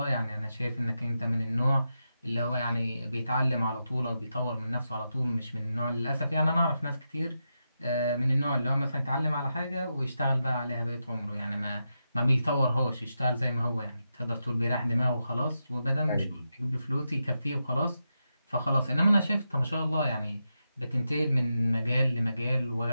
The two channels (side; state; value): both; inverted; correlation -0.87